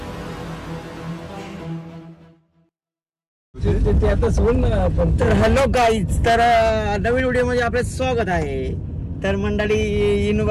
तर हॅलो गाईज, तर नवीन व्हिडिओ मध्ये आपलं स्वागत आहे. तर मंडळी येऊन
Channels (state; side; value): identical; both; correlation 1.00